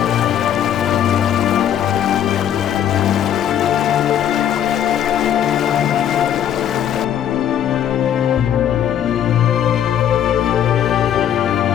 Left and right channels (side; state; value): right; quieter; 10.1 dB